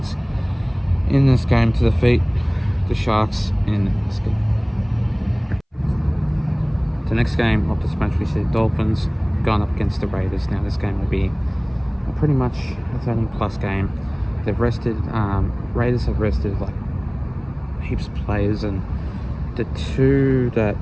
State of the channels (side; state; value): both; identical; correlation 1.00